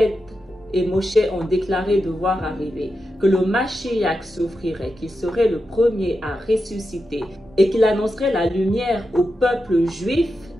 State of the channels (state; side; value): normal; both; correlation 0.89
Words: et Moshe ont déclaré devoir arriver, que le Mashiach souffrirait, qu'il serait le premier à ressusciter et qu'il annoncerait la lumière au peuple juif